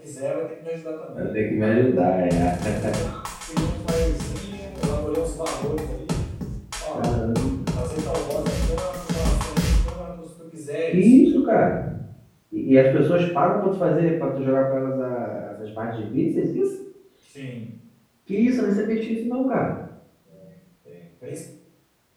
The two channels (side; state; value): both; identical; correlation 1.00